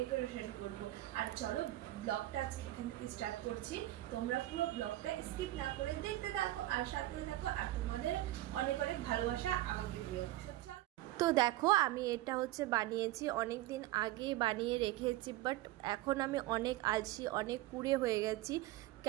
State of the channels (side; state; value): left; quieter; 16.3 dB